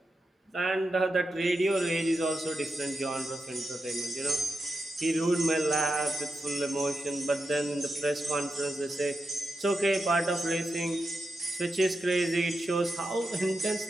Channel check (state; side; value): normal; both; correlation 0.88